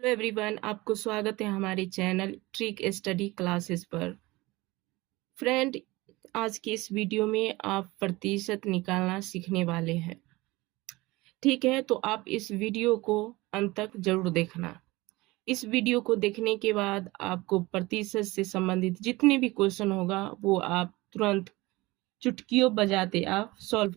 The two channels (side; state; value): left; quieter; 21.1 dB